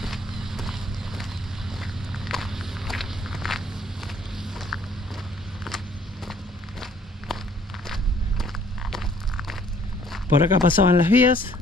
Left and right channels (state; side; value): normal; both; correlation 0.60